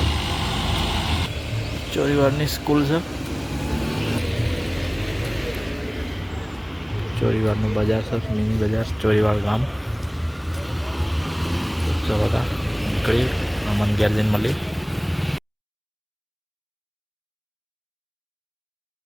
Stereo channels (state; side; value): identical; both; correlation 1.00